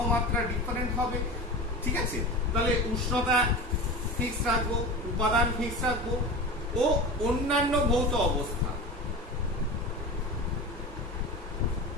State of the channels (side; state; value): both; normal; correlation 0.29